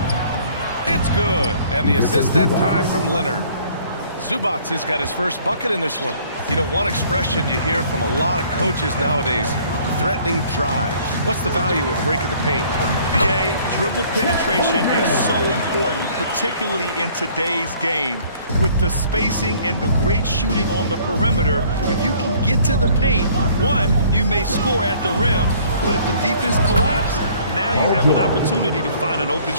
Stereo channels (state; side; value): inverted; both; correlation -0.56